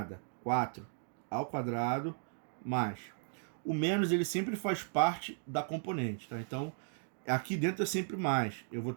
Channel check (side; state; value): left; silent; digital silence